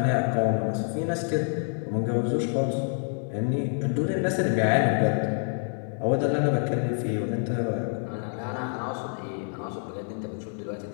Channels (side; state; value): right; silent; 60 dB below the other